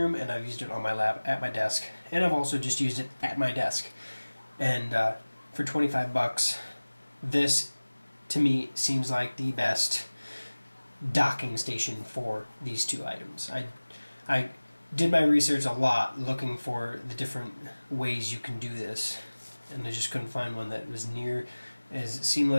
and I've used it on my lap at my desk, and I've also just used it at my desk. And for 25 bucks, this to me seems like the best docking station for these two items. I did my research a lot looking for the different ways you can do this, and I just couldn't find one that was near as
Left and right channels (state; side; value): inverted; both; correlation -1.00